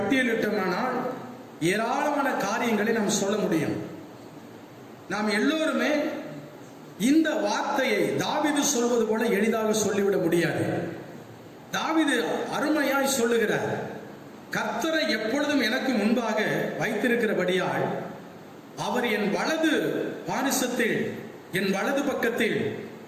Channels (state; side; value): identical; both; correlation 1.00